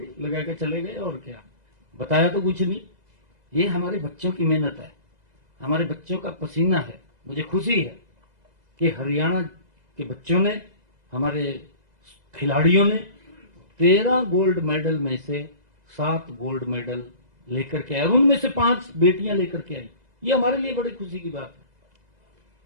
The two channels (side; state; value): left; late; 2.0 ms